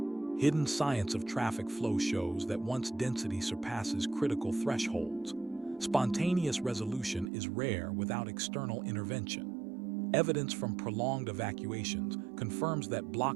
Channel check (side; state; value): left; drops out; at 7.3 s